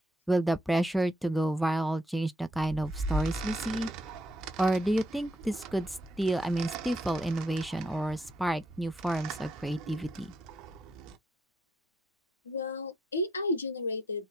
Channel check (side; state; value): both; normal; correlation 0.76